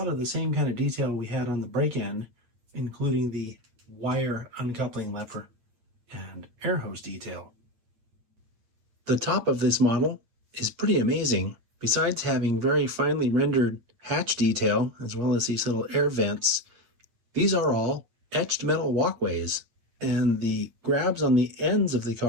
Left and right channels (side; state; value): left; late; 9.0 ms